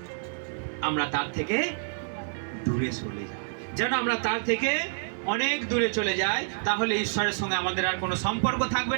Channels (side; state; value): left; silent; digital silence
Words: আমরা তার থেকে দূরে সরে যাই, যেন আমরা তার থেকে অনেক দূরে চলে যাই। তাহলে ঈশ্বরের সঙ্গে আমাদের আর কোনো সম্পর্ক থাকবে